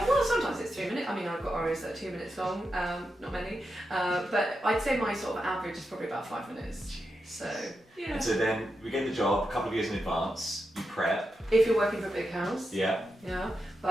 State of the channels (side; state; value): both; normal; correlation 0.87